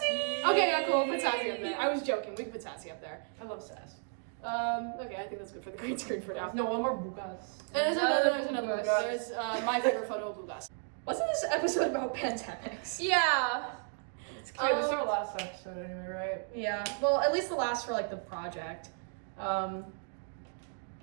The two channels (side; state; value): left; silent; 55 dB below the other